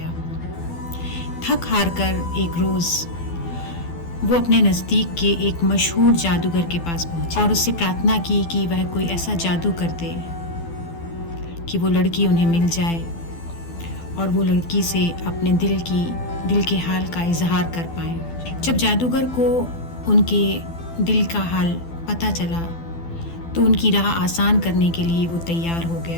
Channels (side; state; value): right; late; 12 ms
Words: थक हार कर एक रोज़ वो अपने नज़दीक के एक मशहूर जादूगर के पास पहुंचे और उससे प्रार्थना की कि वह कोई ऐसा जादू कर दे कि वो लड़की उन्हें मिल जाए और वो लड़की से अपने दिल के हाल का इजहार कर पाए। जब जादूगर को उनके दिल का हाल पता चला तो उनकी राह आसान करने के लिए वो तैयार हो